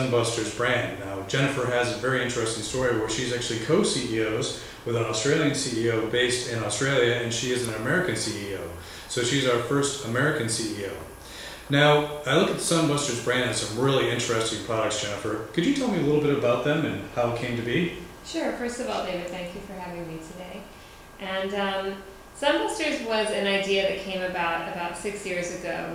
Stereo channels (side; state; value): both; identical; correlation 1.00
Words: brand. Now, Jennifer has a very interesting story where she's actually co-CEOs with an Australian CEO based in Australia, and she is an American CEO. So she's our first American CEO. Now, I look at the Sunbusters brand and some really interesting products, Jennifer. Could you tell me a little bit about them and how it came to be? Sure. First of all, David, thank you for having me today. And Sunbusters was an idea that came about 6 years ago.